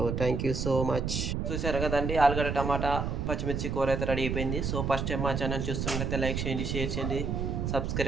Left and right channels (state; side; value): noise; right; rumble, 1 dB below the sound